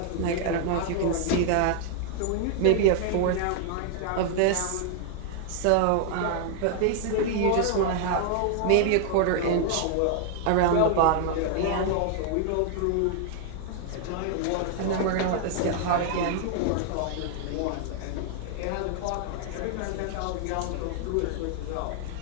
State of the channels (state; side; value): different; both; correlation 0.00